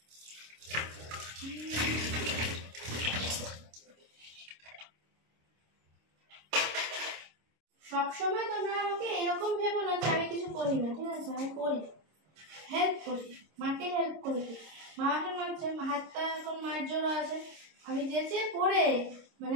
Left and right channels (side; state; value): left; late; 26 ms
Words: সবসময় তোমরা আমাকে এরকম ভেবো না যে আমি কিছু করি না, ঠিক আছে? আমি করি, হেল্প করি, মাকে হেল্প করে দিই। মা এখন মানছে, হাতটা এখন মায়ের জোরও আছে। আমি যেচে পড়ে মানে